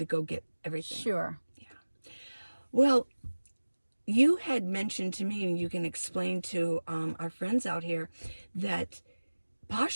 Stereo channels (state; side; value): inverted; both; correlation -1.00